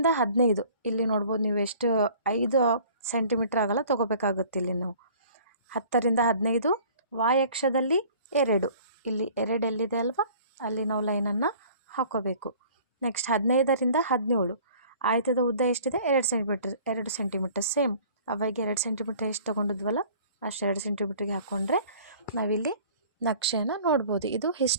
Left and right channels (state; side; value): inverted; both; correlation -0.50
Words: 15, ಇಲ್ಲಿ ನೋಡ್ಬೋದು ನೀವು ಎಷ್ಟು 5 ಸೆಂಟಿಮೀಟ್ರ್ ಆಗಲ್ಲ ತೊಗೋಬೇಕಾಗುತ್ತೆ. ಇಲ್ಲಿ ನಾವು 10ರಿಂದ 15 ವಾಯಕ್ಷದಲ್ಲಿ 2, ಇಲ್ಲಿ 2 ಎಲ್ಲಿದೆ ಅಲ್ವಾ ಅಲ್ಲಿ ನಾವು ಲೈನನ್ನು ಹಾಕೋಬೇಕು. ನೆಕ್ಸ್ಟ್ 15ರಿಂದ 17 ಆಯತದ ಉದ್ದ ಎಷ್ಟಿದೆ 2 ಸೆಂಟಿಮೀಟ್ರ್ ಸೇಮ್ ಅವಾಗ 2 ಸೆಂಟಿಮೀಟ್ರ್ ಎಷ್ಟು ತೊಗೊಂಡಿದ್ವಲ್ಲ ಅಷ್ಟು 2 ಸೆಂಟಿಮೀಟ್ರಿಗೆ ಹಾಕ್ಕೊಂಡ್ರೆ ನಾವಿಲ್ಲಿ ನಕ್ಷೆಯನ್ನು ನೋಡ್ಬೋದು. ಇದು